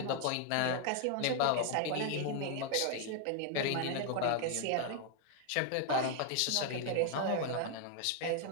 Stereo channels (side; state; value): both; different; correlation 0.00